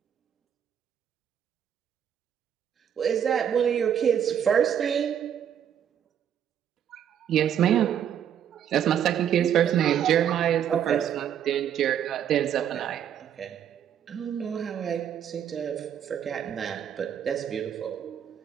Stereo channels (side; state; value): left; quieter; 9.3 dB